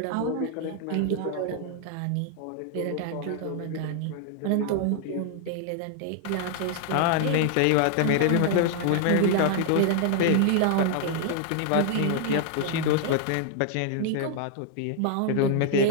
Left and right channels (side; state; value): both; different; correlation 0.00